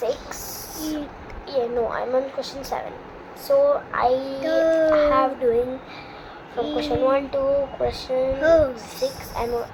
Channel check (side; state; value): both; identical; correlation 1.00